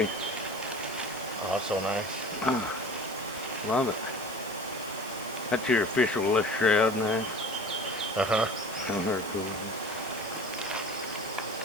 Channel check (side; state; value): right; noise; hiss, 17 dB below the sound